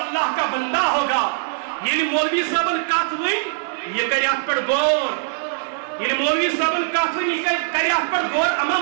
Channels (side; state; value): left; silent; digital silence